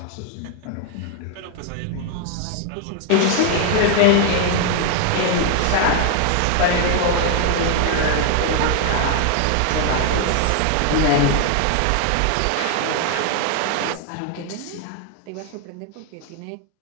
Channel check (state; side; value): different; both; correlation 0.00